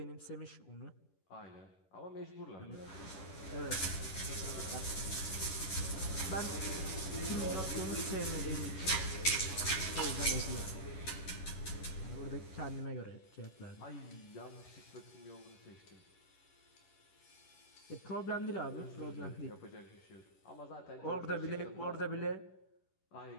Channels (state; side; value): late; right; 11 ms